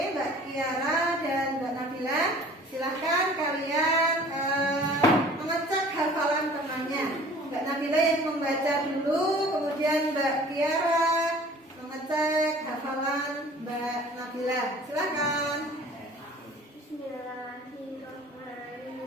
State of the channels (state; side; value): normal; both; correlation 0.48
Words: Mbak Kiara dan Mbak Nabila, silahkan kalian mengecek hafalan temannya. Mbak Nabila yang membaca dulu, kemudian Mbak Kiara mengecek hafalan Mbak Nabila. Silakan.